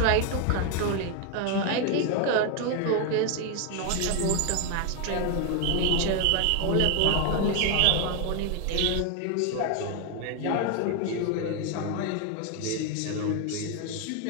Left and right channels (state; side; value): different; both; correlation 0.01